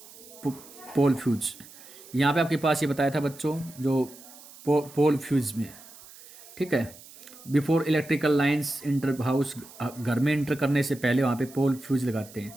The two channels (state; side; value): noise; right; hiss, 20 dB below the sound